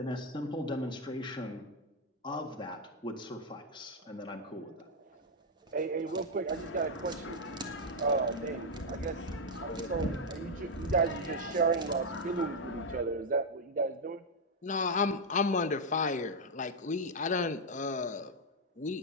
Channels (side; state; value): both; normal; correlation 0.00